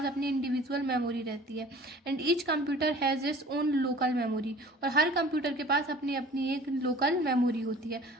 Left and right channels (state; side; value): normal; both; correlation 0.46